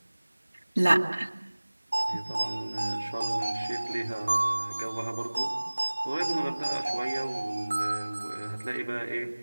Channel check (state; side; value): inverted; both; correlation -1.00